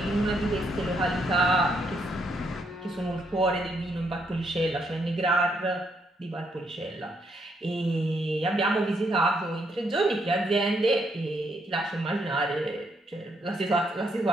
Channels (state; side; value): normal; both; correlation 0.75